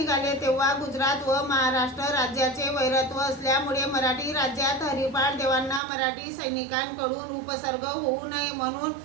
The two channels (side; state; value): left; drops out; at 5.8 s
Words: तेव्हा गुजरात व महाराष्ट्र राज्याचे वैरत्व असल्यामुळे मराठी राज्यात हरिपाठ देवांना मराठी सैनिकांकडून उपसर्ग होऊ नये म्हणून